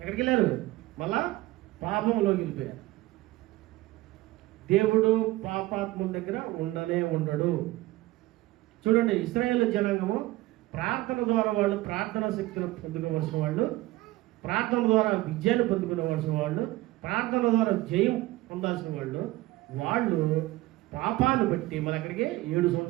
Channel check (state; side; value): quieter; left; 18.3 dB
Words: వెళ్ళారు? మళ్ళా పాపంలోకి వెళ్ళిపోయారు. దేవుడు పాపాత్ముల దగ్గర ఉండడు. చూడండి, ఇశ్రాయేలు జనాంగము ప్రార్థన ద్వారా వాళ్ళు ప్రార్థనా శక్తిని పొందుకోవలసిన వాళ్ళు, ప్రార్థన ద్వారా విజయాన్ని పొందుకునేవలసిన వాళ్ళు, ప్రార్థన ద్వారా జయం పొందాల్సిన వాళ్ళు పాపాన్ని బట్టి మన అక్కడికి 7